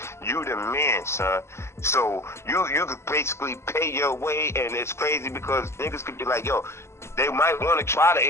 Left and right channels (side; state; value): right; late; 0.13 ms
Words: you the man, son. So you could basically pay your way, and it's crazy because niggas could be like, yo, they might want to try to